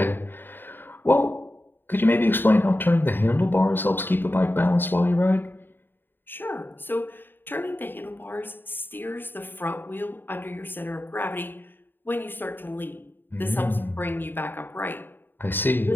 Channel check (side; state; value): right; late; 0.096 ms